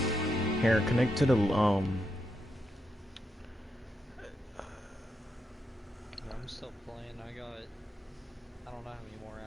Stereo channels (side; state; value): both; normal; correlation 0.83